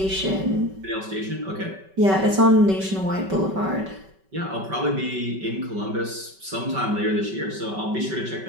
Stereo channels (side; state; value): left; late; 5.2 ms